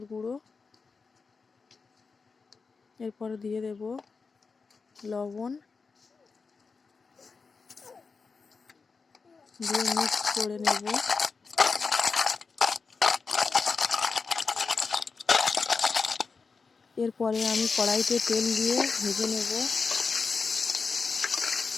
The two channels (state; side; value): quieter; right; 4.7 dB